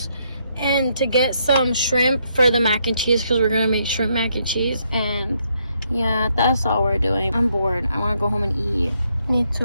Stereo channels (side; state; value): both; inverted; correlation -0.74